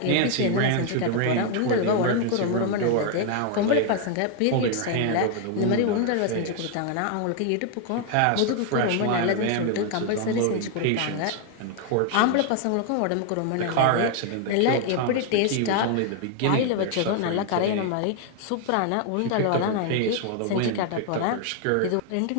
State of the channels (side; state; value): both; different; correlation 0.00